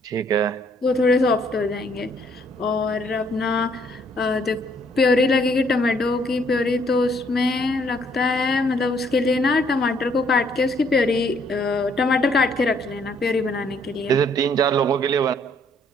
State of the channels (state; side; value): normal; both; correlation 0.66